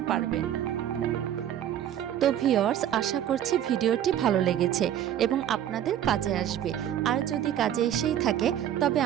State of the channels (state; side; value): quieter; left; 10.7 dB